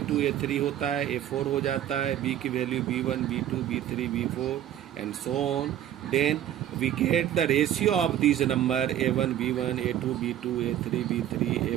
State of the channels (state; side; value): quieter; left; 11.5 dB